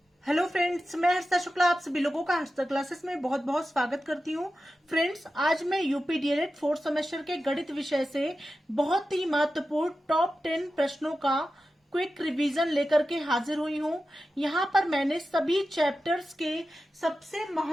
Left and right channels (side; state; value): both; normal; correlation 0.92